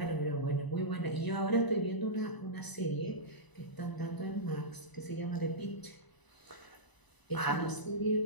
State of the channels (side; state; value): right; late; 1.0 ms